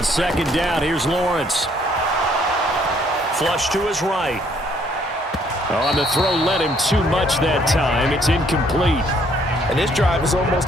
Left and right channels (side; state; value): both; normal; correlation 0.65